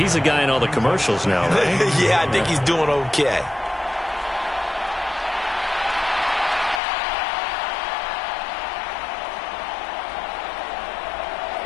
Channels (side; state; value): right; drops out; at 6.8 s